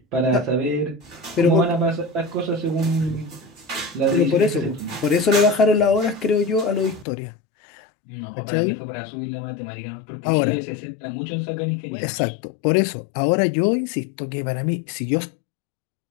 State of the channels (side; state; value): right; drops out; at 7.1 s